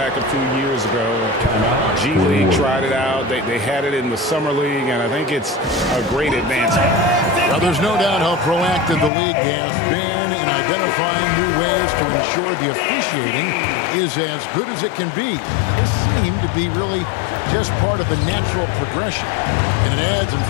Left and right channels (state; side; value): drops out; right; at 9.1 s